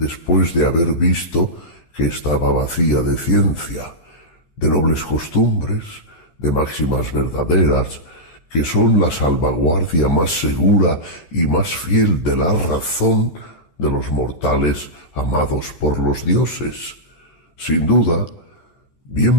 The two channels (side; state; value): right; late; 13 ms